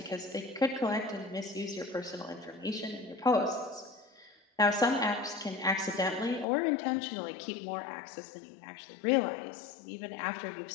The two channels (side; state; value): right; drops out; at 6.5 s